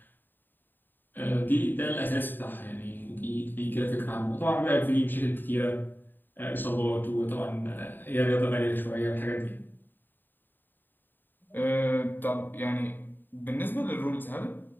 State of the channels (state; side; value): late; right; 0.092 ms